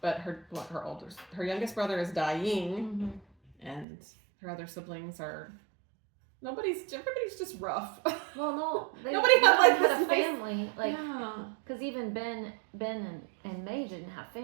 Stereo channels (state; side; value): drops out; left; at 3.9 s